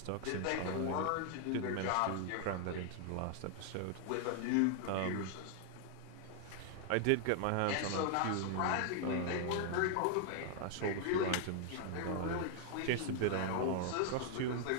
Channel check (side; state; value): both; different; correlation 0.00